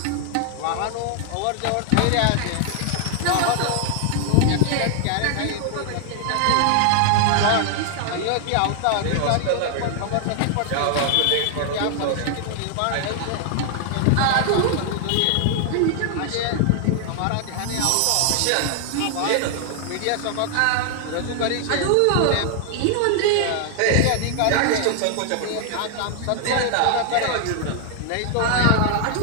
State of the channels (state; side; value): different; both; correlation 0.00